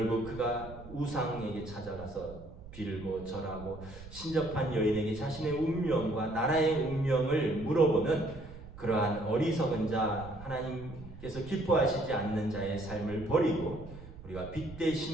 그가 우상에게 찾아가서 빌고 절하고 신접한 여인에게 자신의 운명과 나라의 운명을 물어보는 그러한 어리석은 자, 하나님께서 기뻐하시지 않는 자의 삶을 버리고 우리가 빛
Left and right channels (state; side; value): noise; right; rumble, 15 dB below the sound